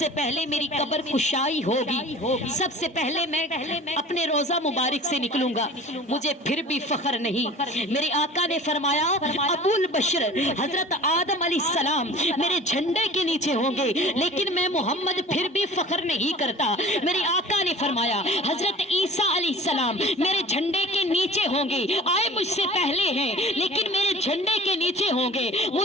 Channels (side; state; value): both; normal; correlation 0.42